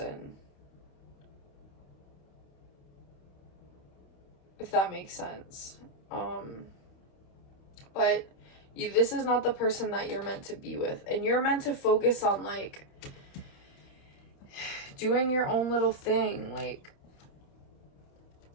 If that makes sense. But this is not the person that you're meant to be with. And you're meant to focus on, like, doing your own little thing. Like,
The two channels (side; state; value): right; late; 28 ms